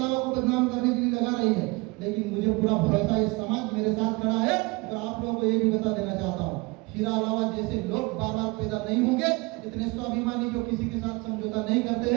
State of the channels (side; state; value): left; quieter; 25.7 dB